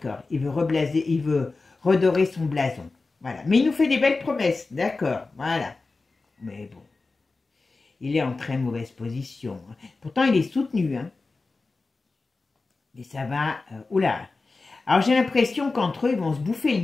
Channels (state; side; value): quieter; right; 3.7 dB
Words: il veut redorer son blason. Voilà, mais il nous fait des belles promesses, d'accord, voilà. Mais bon, il est en très mauvaise position. Pourtant, il est soutenu, hein. Et ça va... oula. Alors, j'ai l'impression qu'entre eux, ils vont se bouffer